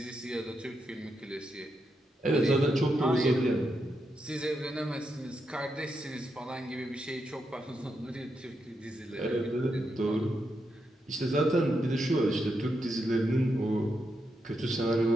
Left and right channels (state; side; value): normal; both; correlation 0.84